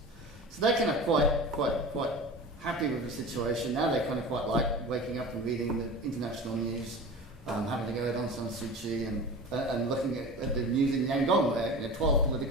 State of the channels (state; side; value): normal; both; correlation 0.33